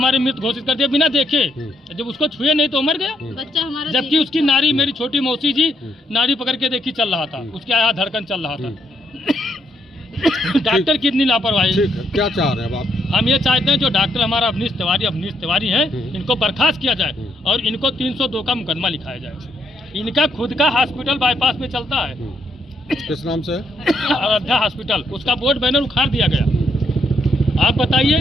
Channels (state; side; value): normal; both; correlation 0.74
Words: मृत घोषित कर दिया बिना देखे। जब उसको छुए नहीं तो मर गया। बच्चा हमारा जबकि उसकी नाड़ी, मेरी छोटी मौसी जी नाड़ी पकड़ के देखी चल रहा था, उसके यहाँ धड़कन चल रहा था। डॉक्टर कितनी लापरवाही। ठीक है, क्या चाह रहे हैं अब आप? हम ये चाहते हैं जो डॉक्टर हमारा अवनीश तिवारी है इनको बर्खास्त किया जाए और इनको 302 का मुकदमा लिखाया जाए। इनका खुद का हॉस्पिटल बाईपास में चलता है, किस नाम से? अयोध्या हॉस्पिटल। उसका बोर्ड बैनर उखाड़ दिया गया। आप